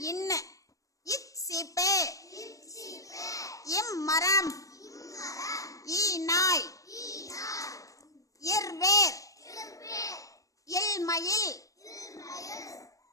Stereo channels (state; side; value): late; right; 0.16 ms